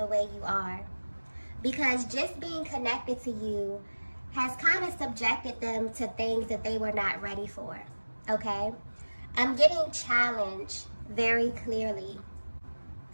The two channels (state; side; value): inverted; both; correlation -1.00